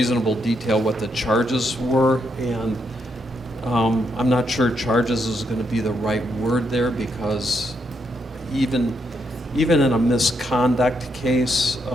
detail what the charges were, and I'm not sure charges is going to be the right word there, because even in a misconduct case,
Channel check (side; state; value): both; normal; correlation 0.78